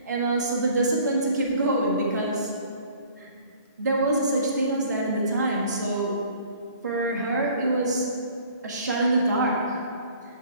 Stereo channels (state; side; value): inverted; both; correlation -0.52